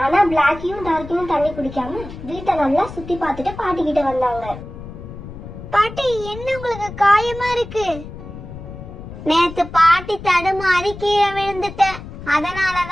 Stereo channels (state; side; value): noise; left; rumble, 13 dB below the sound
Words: ஆனா பிளாக்கியும் டார்க்கியும் தண்ணி குடிக்காம வீட்டை நல்லா சுத்தி பார்த்துட்டு பாட்டி கிட்ட வந்தாங்க. பாட்டி, என்ன உங்களுக்கு காயமா இருக்கு? நேத்து பாட்டி தடுமாறி கீழே விழுந்துட்டேன்,